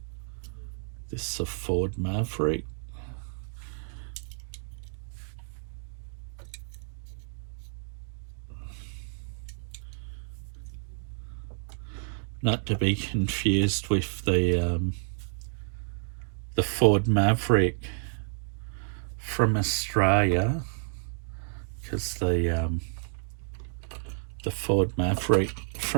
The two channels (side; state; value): left; silent; digital silence